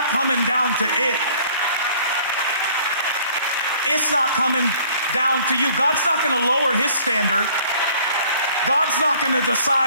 coming down to it. It's not coming down to you. God's not going to lower his standard. God's not going to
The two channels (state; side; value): inverted; both; correlation -0.55